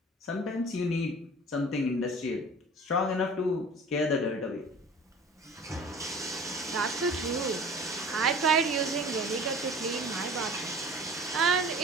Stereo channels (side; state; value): both; normal; correlation 0.43